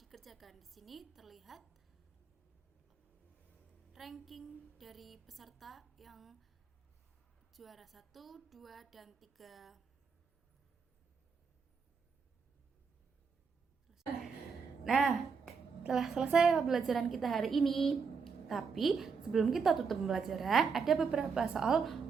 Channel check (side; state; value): left; quieter; 5.6 dB